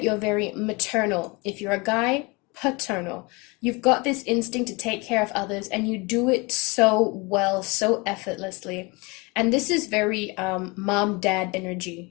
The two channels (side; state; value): right; quieter; 27.0 dB